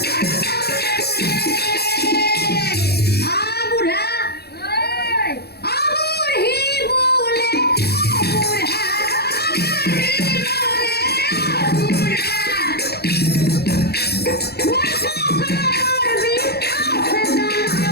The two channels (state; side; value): late; right; 0.47 ms